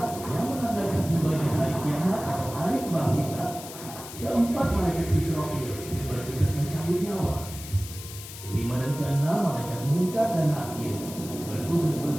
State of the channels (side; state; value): left; noise; hiss, 13 dB below the sound